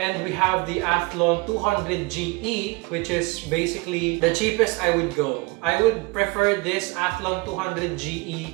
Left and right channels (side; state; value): left; quieter; 26.5 dB